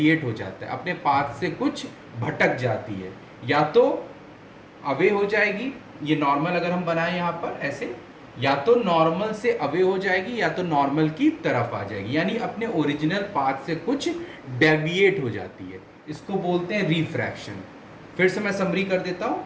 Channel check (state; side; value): identical; both; correlation 1.00